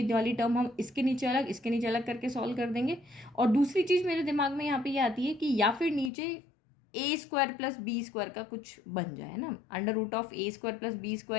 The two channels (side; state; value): right; drops out; at 6.1 s